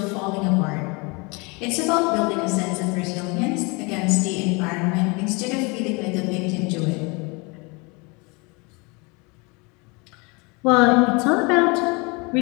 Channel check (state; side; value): quieter; right; 28.7 dB